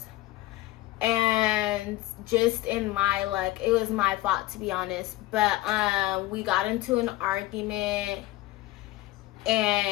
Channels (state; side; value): quieter; right; 17.1 dB